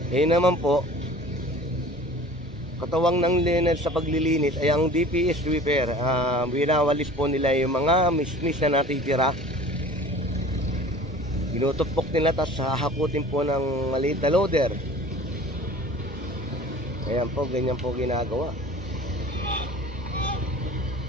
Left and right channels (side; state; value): both; normal; correlation 0.44